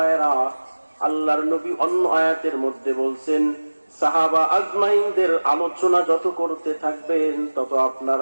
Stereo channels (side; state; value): both; inverted; correlation -1.00